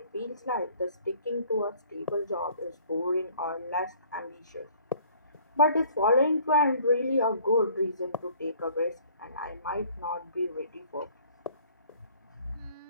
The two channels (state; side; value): inverted; both; correlation -0.56